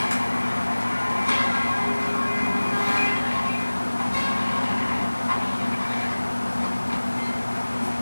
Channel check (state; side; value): inverted; both; correlation -1.00